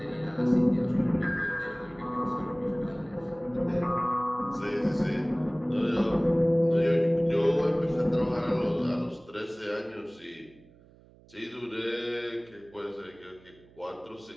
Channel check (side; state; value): right; noise; hum, 26 dB below the sound